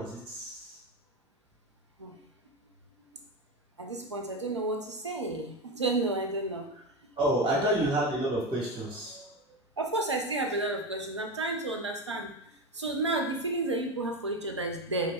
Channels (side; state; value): both; normal; correlation 0.16